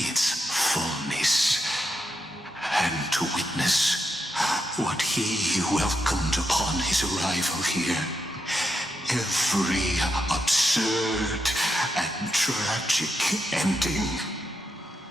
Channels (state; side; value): normal; both; correlation 0.84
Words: fullness, and to witness what he welcomed upon his arrival here. Every absurd and tragic ending.